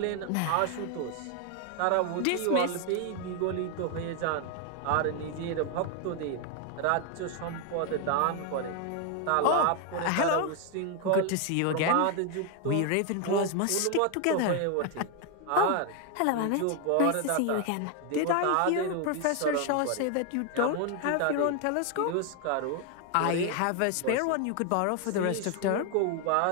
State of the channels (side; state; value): both; different; correlation 0.01